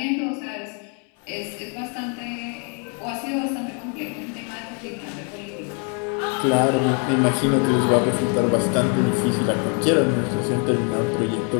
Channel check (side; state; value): right; quieter; 38.4 dB